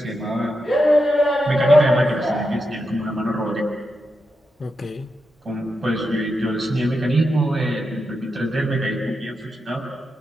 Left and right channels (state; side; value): normal; both; correlation 0.87